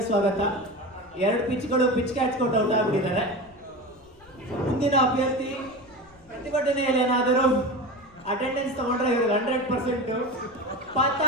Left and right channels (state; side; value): noise; left; rumble, 28 dB below the sound